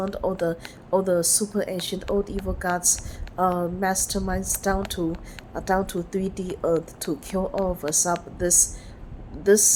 all the super ancient old evil gods, masterminds down to 3D earth to kill all of us up. This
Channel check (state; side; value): identical; both; correlation 1.00